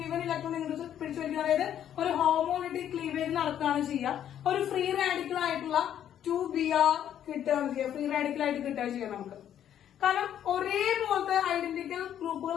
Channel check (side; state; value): right; quieter; 10.2 dB